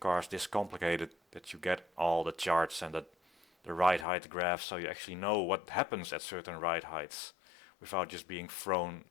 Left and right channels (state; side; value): drops out; right; at 4.0 s